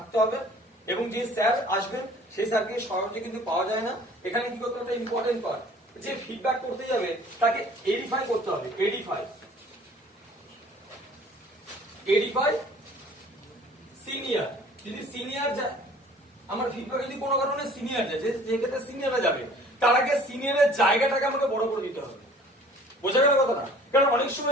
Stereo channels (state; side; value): normal; both; correlation 0.51